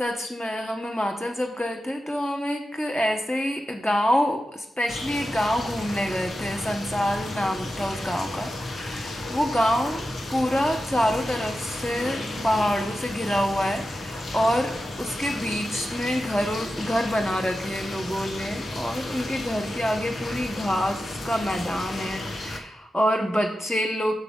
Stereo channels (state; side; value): normal; both; correlation 0.91